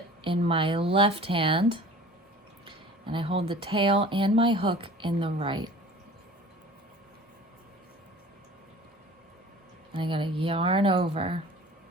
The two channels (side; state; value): both; normal; correlation 0.44